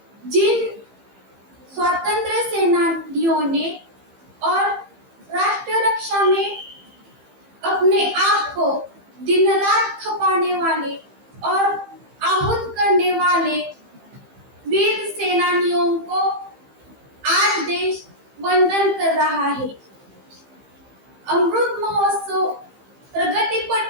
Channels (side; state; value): left; late; 15 ms